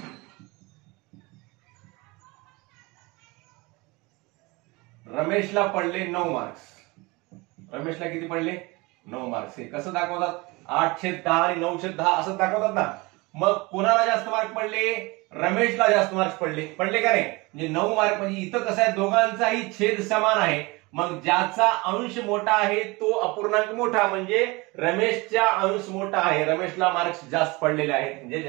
रमेशला पडले 9 मार्क्स। रमेशला किती पडले? 9 मार्क्स। हे कसं दाखवतात? 8/10 आणि 9/10 असं दाखवतात ना। मग कोणाला जास्त मार्क पडले? रमेशला जास्त मार्क्स पडले का नाही? म्हणजे 9 मार्क, म्हणजे इथं कसं आहे, दोघांचाही छेद समान आहे। मग ज्याचा अंश मोठा आहे तो अपूर्णांक मोठा, म्हणजे रमेशचा अंश मोठा आहे, रमेशला मार्क्स जास्त पडलेले आहेत, म्हणजे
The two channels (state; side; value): quieter; left; 24.6 dB